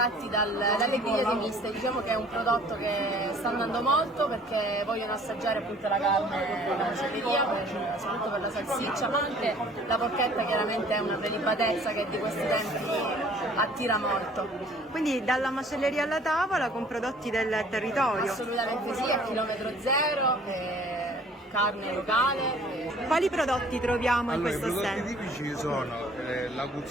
dalle grigliate miste, diciamo che è un prodotto che sta andando molto perché vogliono assaggiare appunto la carne della macelleria, soprattutto per la salsiccia, ma anche la porchetta chiaramente è una prelibatezza che di questi tempi attira molto. Quindi dalla macelleria alla tavola con prodotti del territorio? Assolutamente sì, a chilometro zero, carne locale. Quali prodotti troviamo in questo stand? I prodotti tipici sono la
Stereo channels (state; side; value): normal; both; correlation 0.53